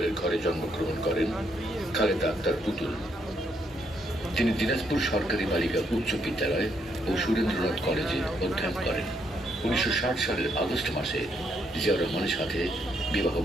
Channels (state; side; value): normal; both; correlation 0.75